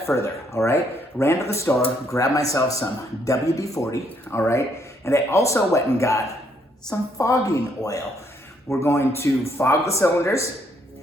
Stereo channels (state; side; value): normal; both; correlation 0.71